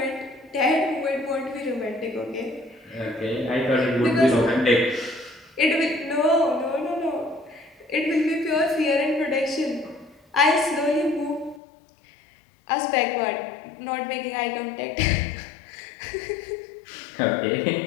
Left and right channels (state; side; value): drops out; right; at 11.6 s